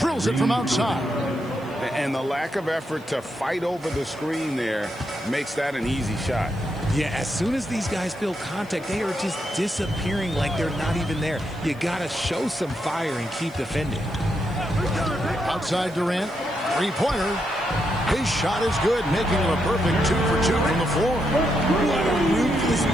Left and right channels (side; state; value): right; noise; hiss, 27 dB below the sound